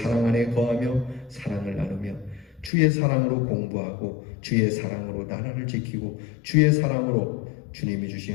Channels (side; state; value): right; drops out; at 2.7 s